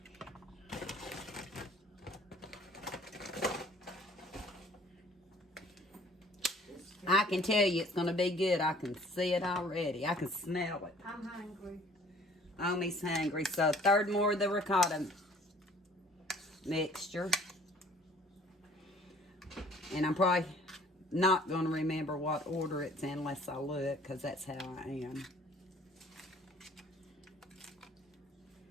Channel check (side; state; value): both; normal; correlation 0.54